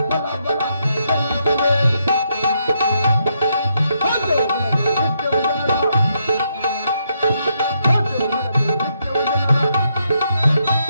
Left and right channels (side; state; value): both; inverted; correlation -0.78